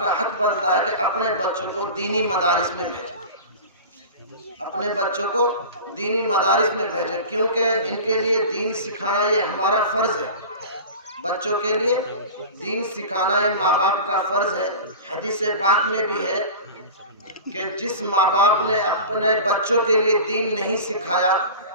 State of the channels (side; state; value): both; inverted; correlation -0.34